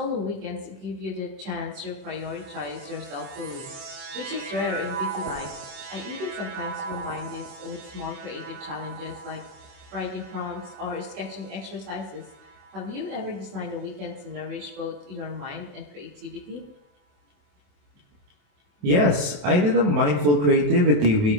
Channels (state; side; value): late; left; 28 ms